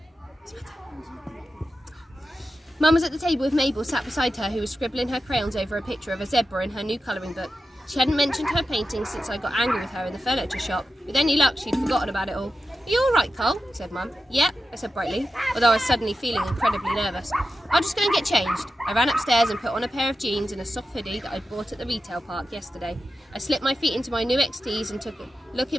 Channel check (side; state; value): both; normal; correlation 0.91